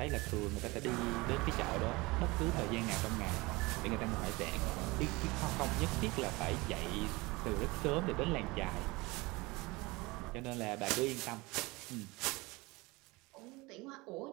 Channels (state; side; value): quieter; left; 23.3 dB